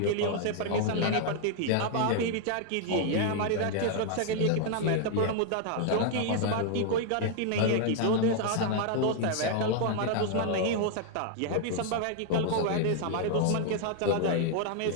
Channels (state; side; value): different; both; correlation 0.00